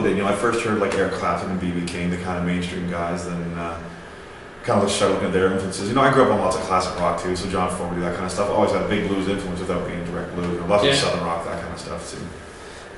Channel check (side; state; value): both; identical; correlation 1.00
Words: did. I first heard like Eric Clapton and B.B. King, the kind of mainstream guys. Then kind of started looking at their influences. I grew up on lots of classic rock too, so John Fogerty, that kind of stuff. Always had a big blues influence without being direct blues. Lots of southern rock, that kind of stuff too.